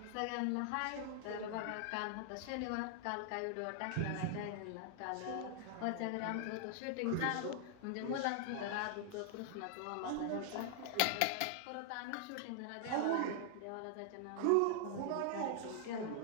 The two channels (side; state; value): both; different; correlation 0.00